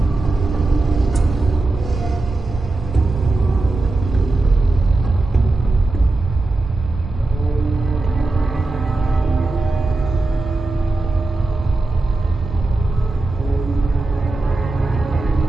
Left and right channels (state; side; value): quieter; left; 3.1 dB